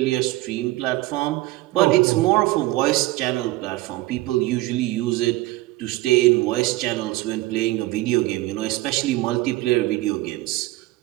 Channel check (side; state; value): left; quieter; 18.7 dB